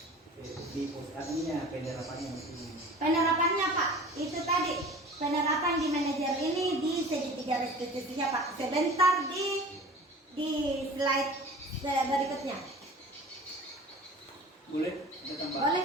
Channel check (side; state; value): both; normal; correlation 0.41